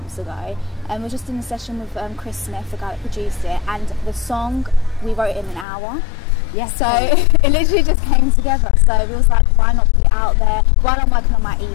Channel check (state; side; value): drops out; right; at 5.7 s